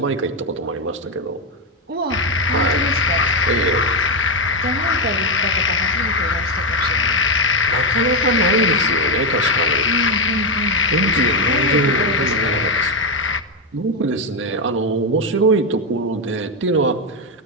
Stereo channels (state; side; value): normal; both; correlation 0.08